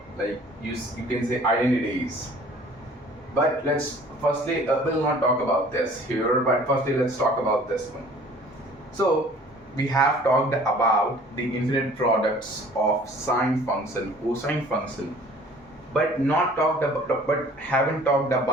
you can say identities. But let's firstly, we'll not talk about this here, but firstly, let's talk about this one. So, we have talked about the infinite products of sine function, cosine function, but not talked about, but haven't talked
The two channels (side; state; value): both; normal; correlation 0.51